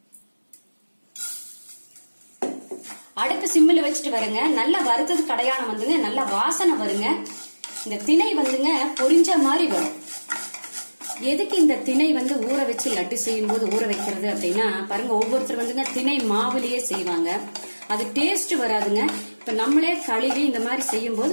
அடுப்பு சிம்மில் வச்சுட்டு வருங்க. நல்லா வறுத்தது கடையானம் வந்துங்க, நல்லா வாசனை வருங்க. இந்த திணை வந்துங்க பொரிஞ்ச மாதிரி வரும். எதுக்கு இந்த திணை ஊற வச்சு லட்டு செய்யும் போது ஊற வைக்கிறது அப்படின்னா, பாருங்க, ஒவ்வொருத்தர் வந்துங்க திணை மாவுலயே செய்வாங்க. அது டேஸ்ட் வராதுங்க. இப்ப நம்மளே கழுவி இந்த மாதிரி செய்யும் போது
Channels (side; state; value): both; inverted; correlation -1.00